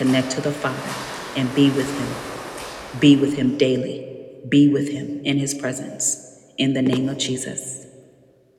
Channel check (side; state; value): both; identical; correlation 1.00